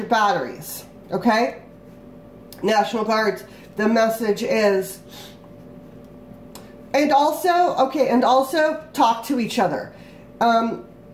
batteries. Okay? National Guards, the message is, and also talk to each other.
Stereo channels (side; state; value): both; identical; correlation 1.00